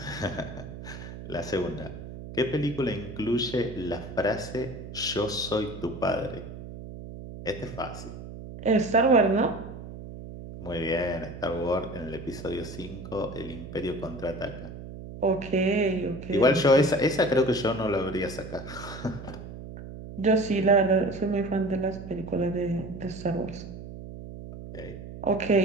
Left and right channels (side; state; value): right; noise; hum, 12 dB below the sound